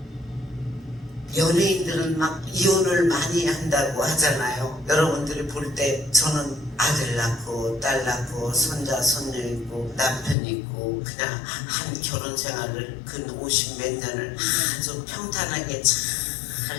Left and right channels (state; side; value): drops out; right; at 10.4 s